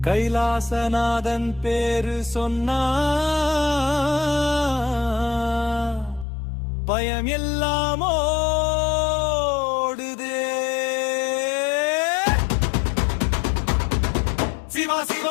கைலாசநாதன் பேரு சொன்னா பயம் எல்லாம் ஓடுதே. சிவா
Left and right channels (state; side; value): drops out; right; at 6.2 s